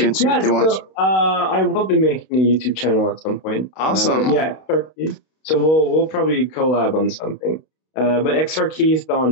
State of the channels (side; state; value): right; late; 32 ms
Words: to if they want? I will be making a YouTube channel at some point. Awesome. XR Keith. So we'll probably collab on something. But XR Keith on